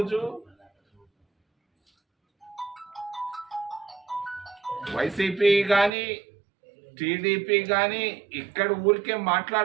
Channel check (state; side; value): drops out; left; at 5.9 s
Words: వైసీపీ కానీ టీడీపీ కానీ ఇక్కడ ఊరికే